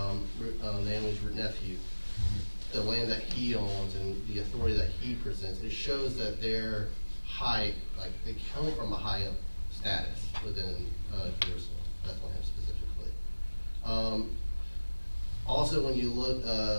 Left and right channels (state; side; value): inverted; both; correlation -1.00